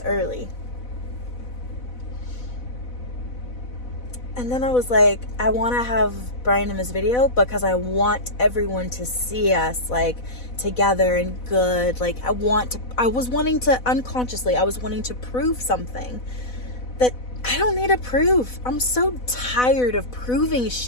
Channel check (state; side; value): late; right; 4.0 ms